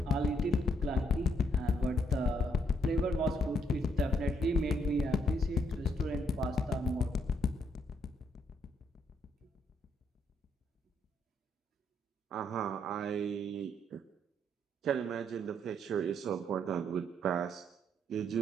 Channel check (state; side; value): normal; both; correlation 0.72